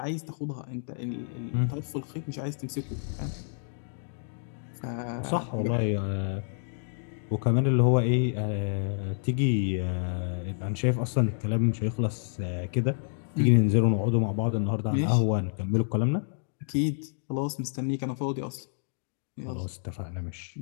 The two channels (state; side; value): silent; right; digital silence